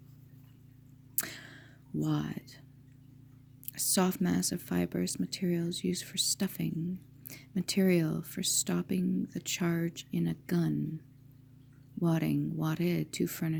Wad. A soft mass of fibrous materials used for stuffing. Material for stopping the charge in a gun. Wadding, wadded, to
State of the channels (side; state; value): both; identical; correlation 1.00